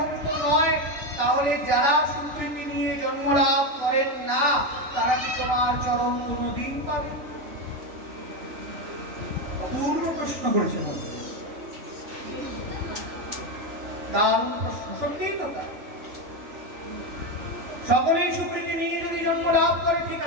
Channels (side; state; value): left; late; 2.9 ms